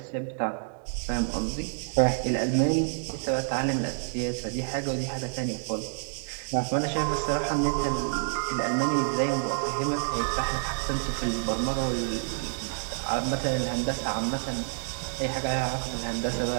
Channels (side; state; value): left; silent; 59 dB below the other